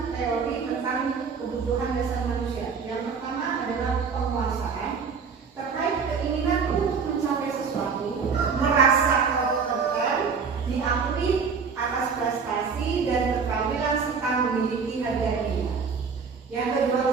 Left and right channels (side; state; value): left; quieter; 5.7 dB